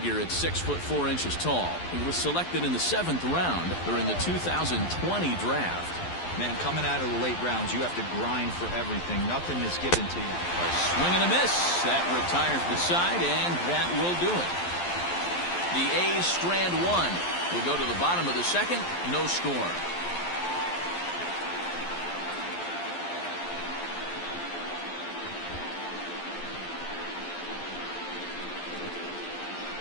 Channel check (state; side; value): late; right; 11 ms